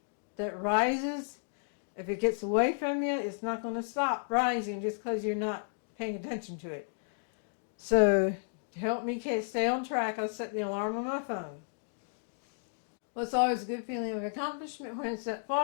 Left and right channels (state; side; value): silent; right; digital silence